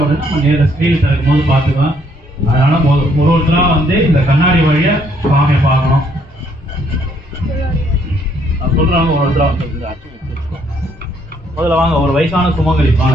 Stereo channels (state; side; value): normal; both; correlation 0.68